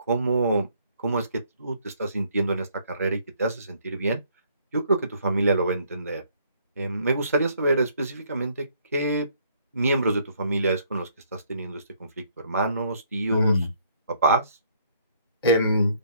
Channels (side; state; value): both; inverted; correlation -0.65